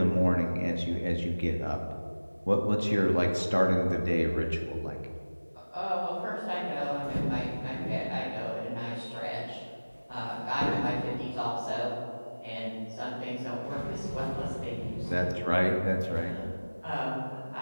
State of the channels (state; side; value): inverted; both; correlation -1.00